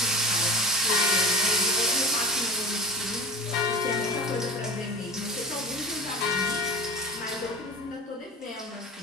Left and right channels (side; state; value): both; normal; correlation 0.31